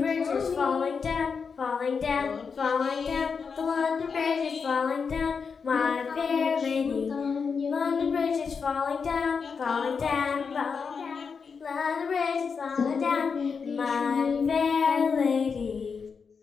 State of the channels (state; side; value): quieter; right; 5.7 dB